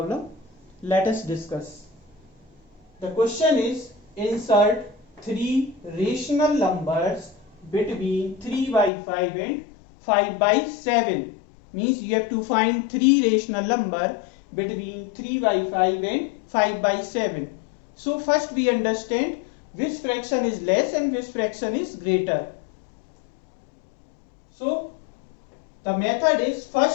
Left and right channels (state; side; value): drops out; right; at 8.9 s